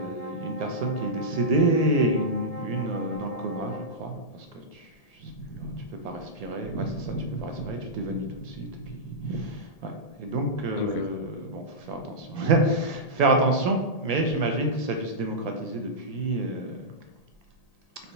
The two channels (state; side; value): late; right; 1.8 ms